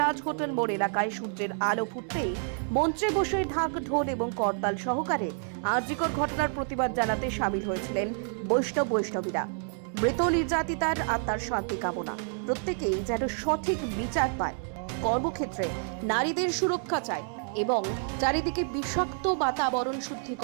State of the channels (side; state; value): left; silent; 59 dB below the other